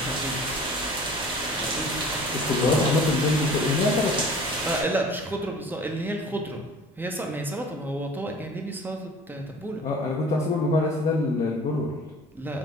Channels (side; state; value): both; normal; correlation 0.45